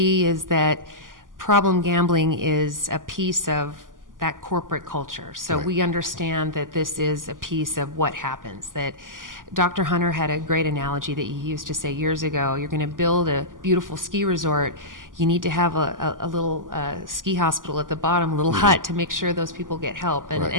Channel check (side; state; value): left; late; 0.89 ms